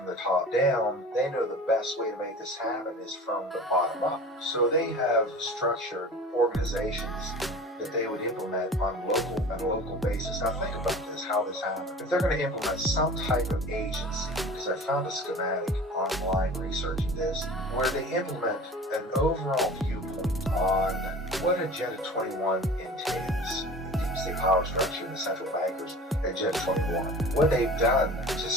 the top down. They know the best way to make this happen is from the bottom up. So they have structured organizations that they would implement on a local basis. Now think about this, how this happens. If they're going to implement some type of agency, because I found a schematic online researching this, where they implement an overall viewpoint on what Agenda 21 entails, deep state power structure and the central bankers, Agenda 21. What they've done to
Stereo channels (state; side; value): normal; both; correlation 0.39